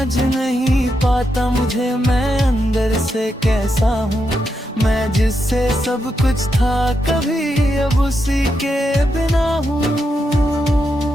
नहीं पाता मुझे मैं अंदर से कैसा हूँ। मैं जिससे सब कुछ था कभी अब उसी के बिना हूँ।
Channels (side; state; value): both; normal; correlation 0.84